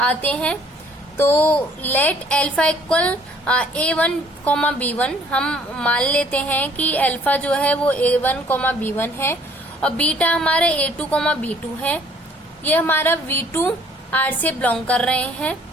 आते हैं। तो let alpha equal A1, B1, हम मान लेते हैं कि अल्फा जो है वो A1, B1 है और बीटा हमारा A2, B2 है। ये हमारा V2R से बिलोंग कर रहे हैं।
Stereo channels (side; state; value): both; normal; correlation 0.59